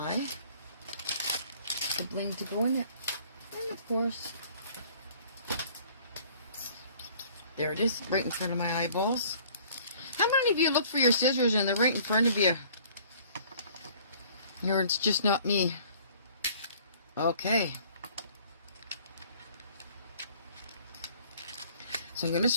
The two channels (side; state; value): both; inverted; correlation -0.54